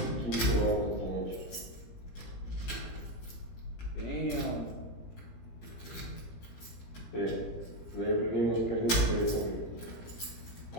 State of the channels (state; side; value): late; right; 17 ms